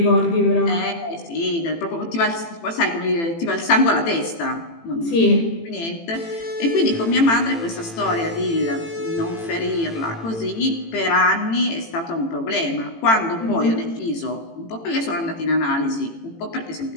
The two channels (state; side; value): late; right; 18 ms